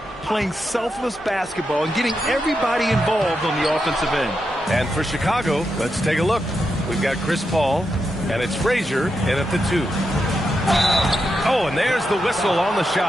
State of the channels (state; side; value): normal; both; correlation 0.85